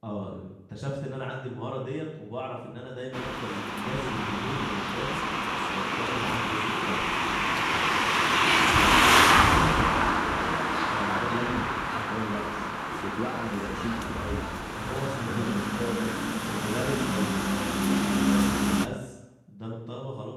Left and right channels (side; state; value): both; identical; correlation 1.00